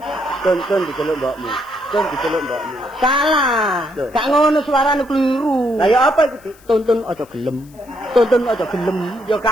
Tun diceluk mbokmu. Salah. Gak ngono suarane keliru. Lah ya apa iku Dik? Tuntun aja gelem. Ya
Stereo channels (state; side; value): noise; left; hiss, 27 dB below the sound